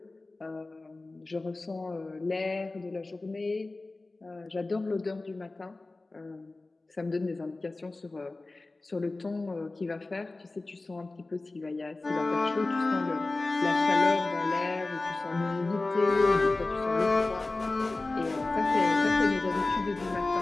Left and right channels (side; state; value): right; quieter; 3.2 dB